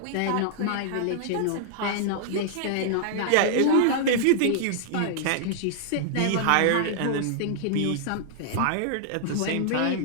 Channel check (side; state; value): both; different; correlation -0.01